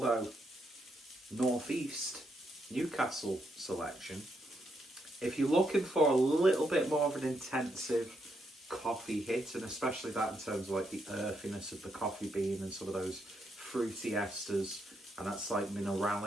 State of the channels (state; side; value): normal; both; correlation 0.79